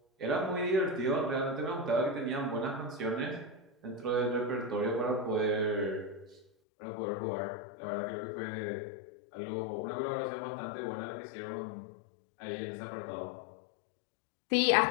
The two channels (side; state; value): right; drops out; at 6.5 s